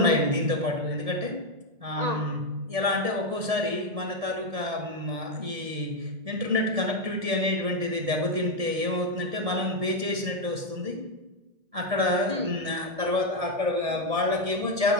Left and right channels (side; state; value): left; late; 1.7 ms